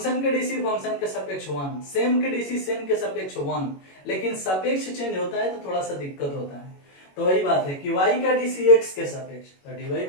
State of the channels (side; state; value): right; late; 21 ms